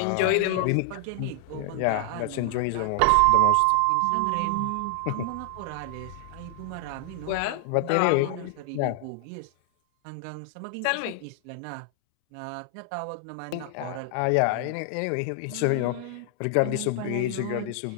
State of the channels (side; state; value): both; different; correlation 0.00